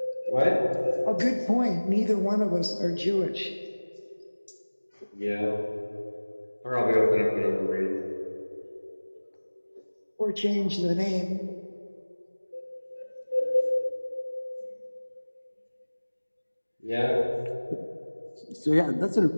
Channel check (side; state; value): both; inverted; correlation -1.00